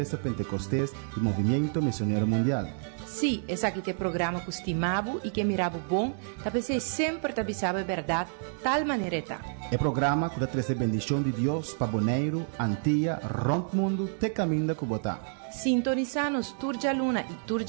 Pentecostés e Movimento Missionário Mundial. Sim, esse aqui é o programa que estimava e que mirava bom, talvez sempre te avisava a verdade, tal maneira está. É programa que traz a bendição de Deus para Bonaire, Antilha, Rond Mundo, te caminho da Cubotá. Sintoniza-nos Turja Luna e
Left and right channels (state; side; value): silent; left; digital silence